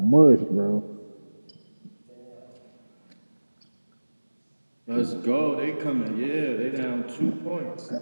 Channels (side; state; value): both; inverted; correlation -1.00